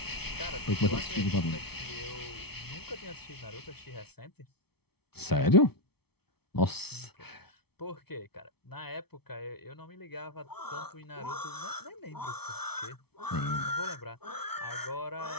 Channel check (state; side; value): late; right; 0.96 ms